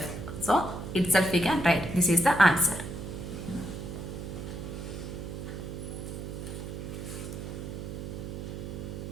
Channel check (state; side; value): noise; right; hum, 7 dB below the sound